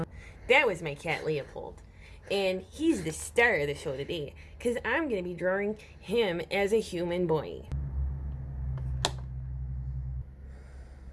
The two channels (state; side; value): identical; both; correlation 1.00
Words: That was my cat Leopold. And he's the star of the show today because I'm going to be drawing him as a human boy.